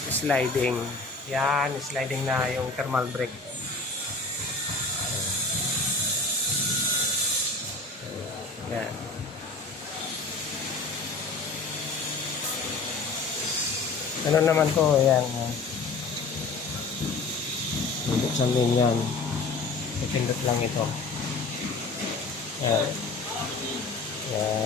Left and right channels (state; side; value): quieter; right; 3.8 dB